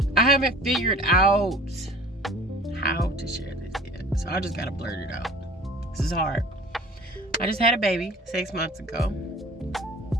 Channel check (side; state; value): both; normal; correlation 0.46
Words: figured out how to share this yet. So I just gotta blurt it out. This is hard. I just had a baby 6 months ago.